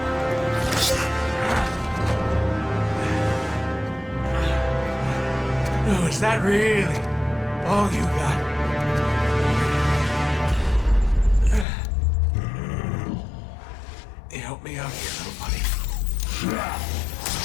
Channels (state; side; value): drops out; right; at 11.7 s